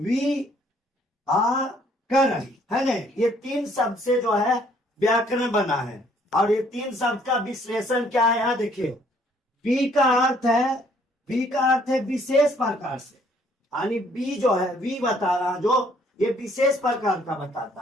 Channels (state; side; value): normal; both; correlation 0.63